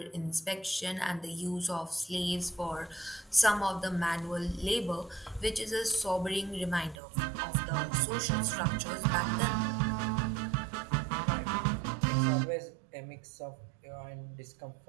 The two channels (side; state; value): left; drops out; at 7.0 s